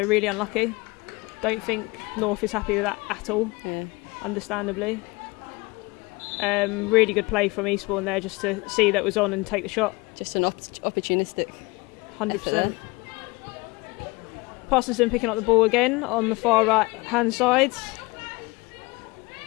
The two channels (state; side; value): quieter; right; 24.3 dB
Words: really unlucky. Don't think North is happy with that at all. Yeah. Understandably. Really good play from Eastbourne there, just to see that was on and take the shot. Just an opportunistic. 100%. Parsonson picking up the ball again on the far right hand side.